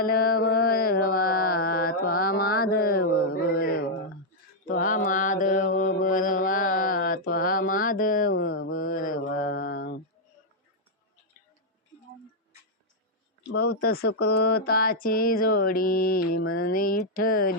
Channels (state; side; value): normal; both; correlation -0.04